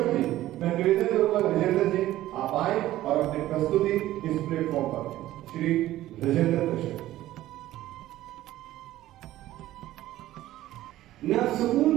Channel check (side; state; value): left; quieter; 14.7 dB